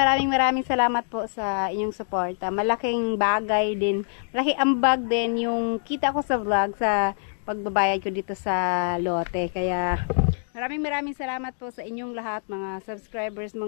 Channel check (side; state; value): right; silent; digital silence